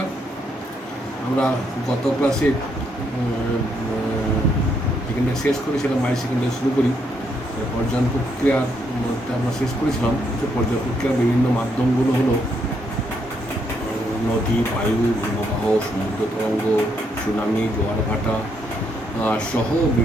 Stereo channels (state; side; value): normal; both; correlation 0.75